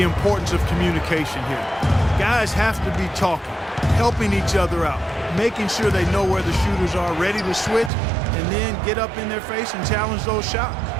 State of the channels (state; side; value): drops out; left; at 7.9 s